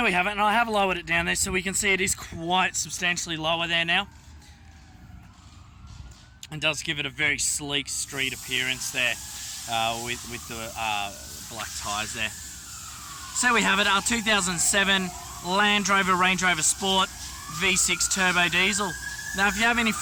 we have it, and I have lowered it down there so we can see it is quite substantially lower there now. And does give it a very sleek street appearance there with the black tyres there. So we have it, our 2007 Land Rover Range Rover Sport V6 Turbo Diesel. Now if you have any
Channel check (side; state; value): both; identical; correlation 1.00